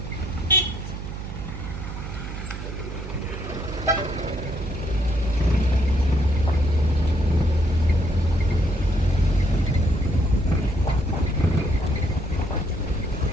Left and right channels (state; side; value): noise; right; hum, 8 dB below the sound